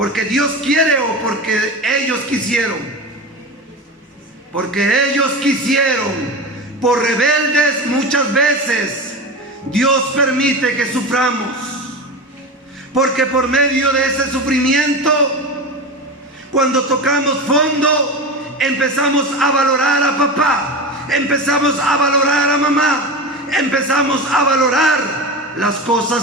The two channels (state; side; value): normal; both; correlation 0.25